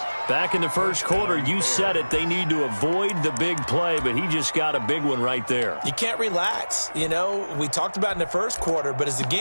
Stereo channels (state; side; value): inverted; both; correlation -1.00